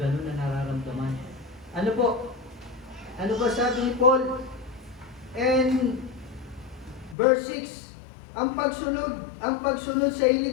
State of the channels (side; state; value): right; drops out; at 7.2 s